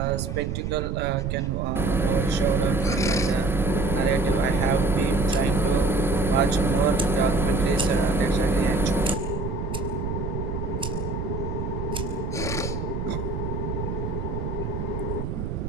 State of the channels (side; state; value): right; noise; rumble, 3 dB below the sound